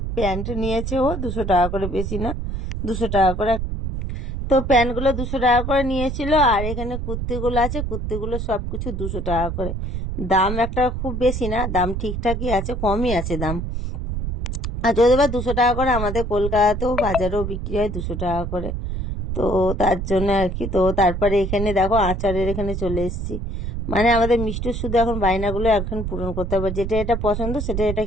প্যান্ট নিয়েছে ও 200 টাকা করে, বেশি না, 200 টাকা করে। তো প্যান্টগুলো 200 টাকা করে নিয়েছিল। আর এখানে কুর্তিগুলো আছে, কুর্তিগুলো সবকিছু 200 টাকা করে। দাম একটা খুব বেশি না, দাম ঠিকঠাকই আছে, কমই আছে দাম। আর যদি বা 200 টাকা করে, আমাদের কলকাতাতেও বাজারেও বিক্রি হয় 200 টাকা করে। তো তার জন্য আর কি। তো তারপরে এখানে দেখো আচারের এখানে চলে এসেছি। মানে আমাদের মিষ্টির শুধু এখন বায়নাগুলো এখন পূরণ করতে হবে, যেটা এটা পছন্দ সেটা এটা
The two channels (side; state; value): right; noise; rumble, 4 dB below the sound